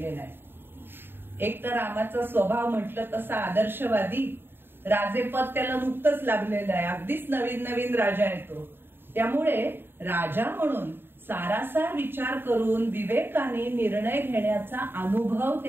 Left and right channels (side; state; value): left; late; 0.10 ms